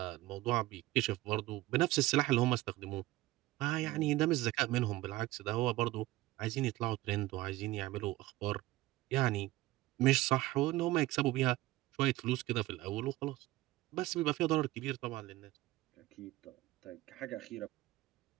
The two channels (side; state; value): left; quieter; 18.1 dB